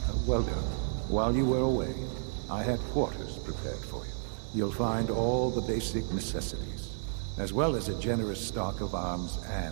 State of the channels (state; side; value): silent; left; 57 dB below the other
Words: Well done. While you were away, I had quarters prepared for you. You'll find all the basic necessities, as well as a generous stock of arms